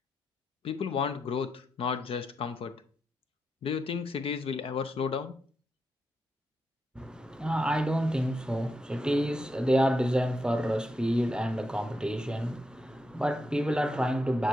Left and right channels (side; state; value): both; normal; correlation 0.84